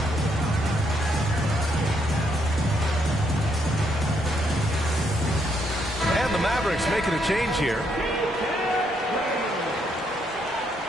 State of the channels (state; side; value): normal; both; correlation 0.74